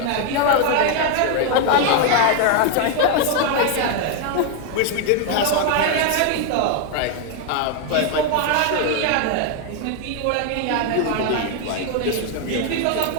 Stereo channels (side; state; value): both; different; correlation 0.01